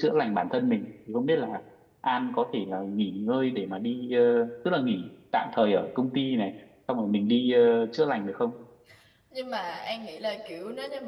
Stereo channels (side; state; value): both; identical; correlation 1.00